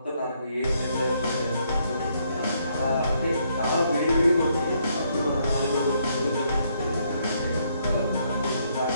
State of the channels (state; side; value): inverted; both; correlation -0.73